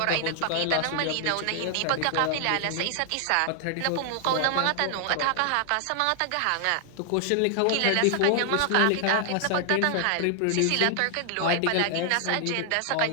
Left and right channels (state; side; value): different; both; correlation 0.00